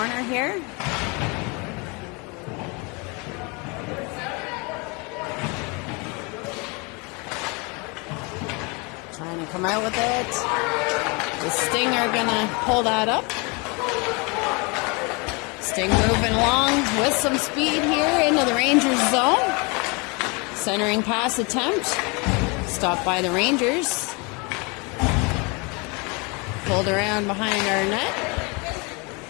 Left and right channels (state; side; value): quieter; right; 29.8 dB